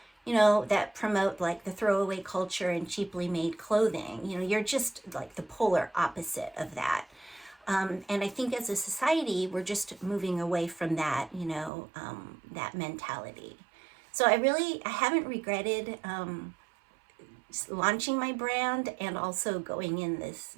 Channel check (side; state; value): left; drops out; at 11.7 s